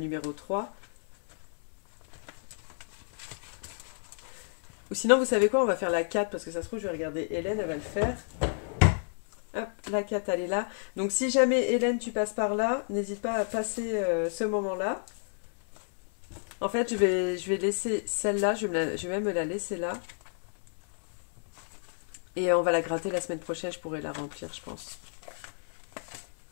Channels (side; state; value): right; silent; 57 dB below the other